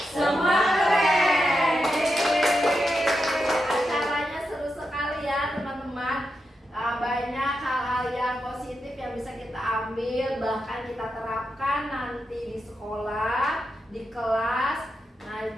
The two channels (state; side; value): normal; both; correlation 0.87